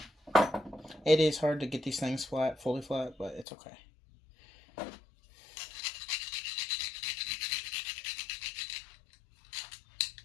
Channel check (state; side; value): drops out; right; at 3.5 s